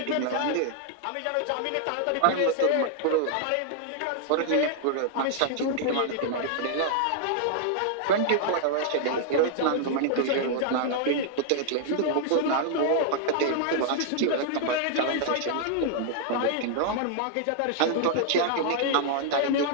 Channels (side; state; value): both; different; correlation -0.01